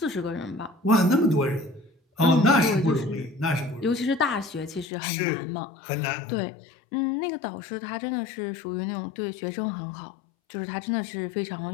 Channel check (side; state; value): right; drops out; at 4.9 s